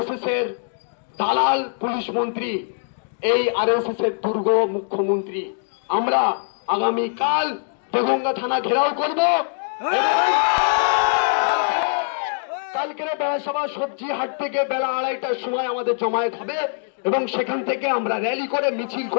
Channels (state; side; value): silent; right; digital silence